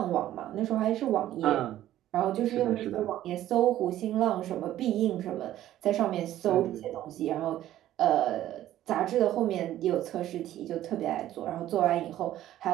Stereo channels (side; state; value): left; quieter; 13.2 dB